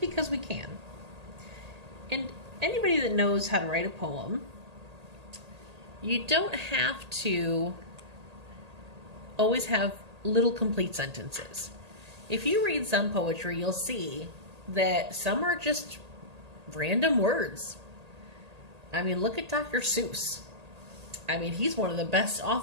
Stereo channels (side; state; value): left; late; 1.8 ms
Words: we can. And anybody that knows how to write a poem, you don't have to always have little complete sentences. If you read some poetry, you'll see that some are just random words. I mean, look at Dr. Seuss. I mean, he's one of the best